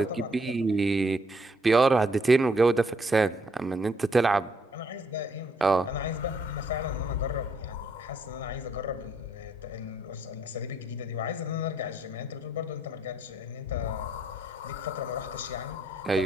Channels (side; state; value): both; normal; correlation 0.69